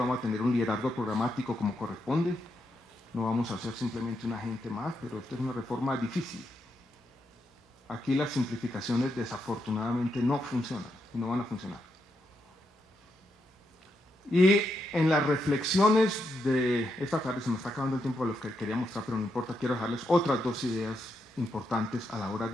a tener un liderazgo programático como corresponde. No vamos a ser simplemente un agente más, pero esta es una reforma difícil. Aquí las simplificaciones desafortunadamente no funcionan y no van a funcionar. Y en las reflexiones de esta tarde, se me está acabando el tiempo de los que quería mostrar, pero no importa, quiero dejarles otras 2 ideas importantes a la hora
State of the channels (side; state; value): both; normal; correlation 0.82